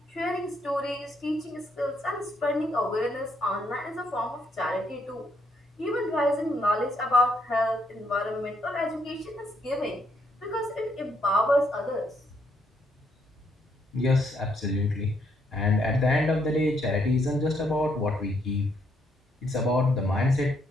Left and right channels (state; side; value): normal; both; correlation 0.73